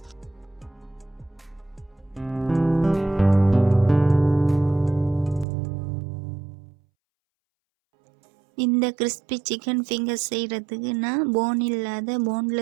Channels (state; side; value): drops out; left; at 5.5 s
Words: இந்த கிறிஸ்பி சிக்கன் ஃபிங்கர்ஸ் செய்கிறதுக்கு நான் போன் இல்லாத